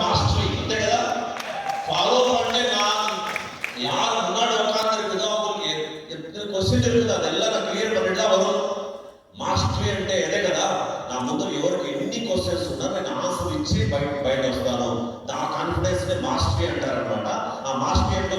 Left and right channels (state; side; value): identical; both; correlation 1.00